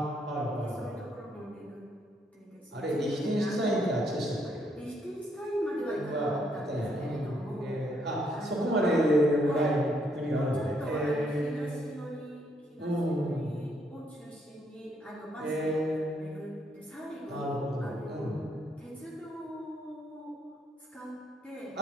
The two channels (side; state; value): both; normal; correlation 0.73